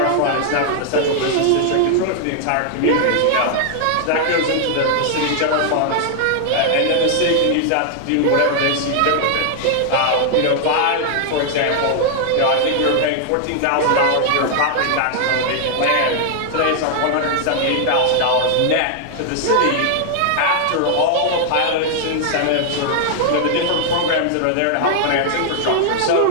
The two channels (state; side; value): different; both; correlation 0.00